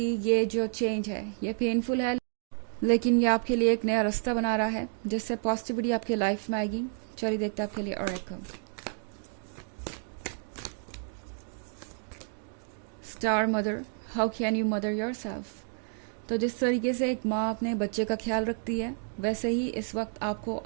जो चेंज है ये पेनफुल है, लेकिन ये आपके लिए एक नया रास्ता बना रहा है जिससे पॉजिटिविटी आपके लाइफ में आएगी। चलिए देखते हैं आपके लिए और एक star mother, how can you mother your self. तो जिस तरीके से एक माँ अपने बच्चे का ख्याल रखती है, वैसे ही इस वक्त आपको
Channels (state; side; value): silent; left; 58 dB below the other